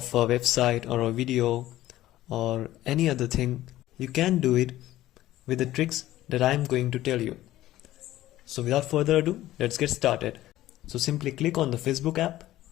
a website or a video or any other thing, you can do it with the tricks that I'm going to tell you. So without further ado, let's get started. So simply click on the Facebook app.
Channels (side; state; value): right; quieter; 14.9 dB